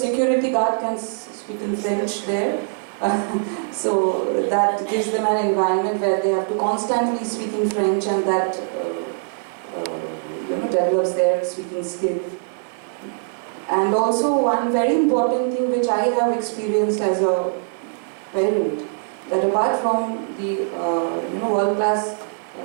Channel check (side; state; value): left; silent; digital silence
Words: guard can speak in French there. So that gives them an environment where they have to constantly speak in French, and that develops their speaking skill. And also one very important thing which I have experienced as a parent, that apart from the world-class